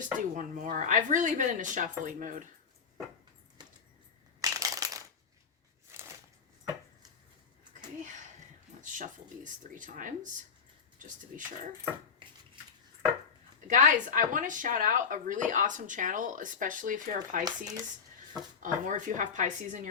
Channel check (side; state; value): right; quieter; 6.2 dB